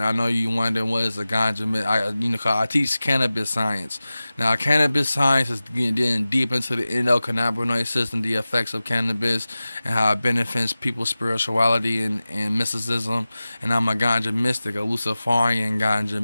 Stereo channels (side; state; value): both; inverted; correlation -0.96